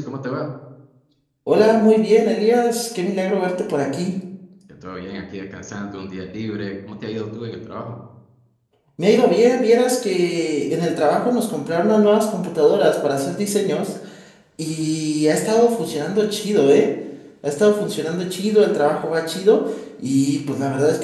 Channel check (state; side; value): identical; both; correlation 1.00